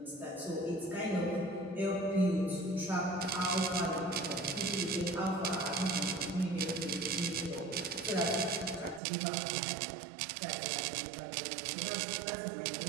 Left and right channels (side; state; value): left; drops out; at 9.0 s